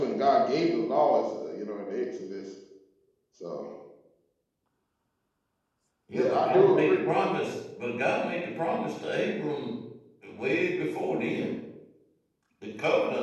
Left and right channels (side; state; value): both; identical; correlation 1.00